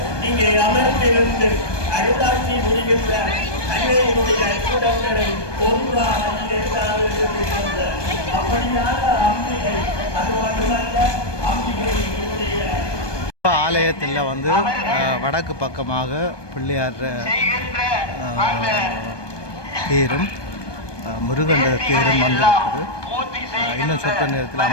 இங்கே அமர்ந்திருந்து அருளாட்சி முடிகின்ற அன்னையினுடைய கூடங்களை ஒரு புறாவில் ஏதாவது இருக்கின்ற அப்படியான அம்பிகை, அது மட்டுமல்ல அம்பிகையினுடைய ஆலயத்தில் வந்து வடக்கு பக்கமாக பிள்ளையார் தேரும் முருகண்ட தேரும் வந்திருக்குது. இன்னும் சொற்ற நேரத்தில்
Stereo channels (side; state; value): right; late; 1.2 ms